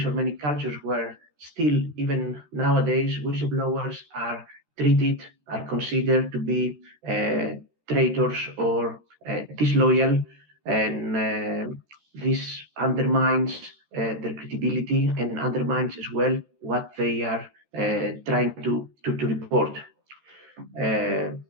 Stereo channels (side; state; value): left; late; 13 ms